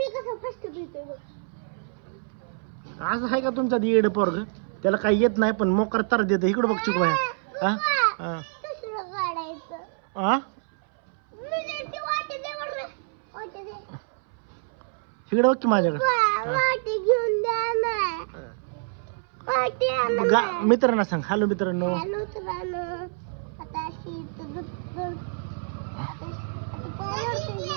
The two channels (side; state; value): left; silent; 60 dB below the other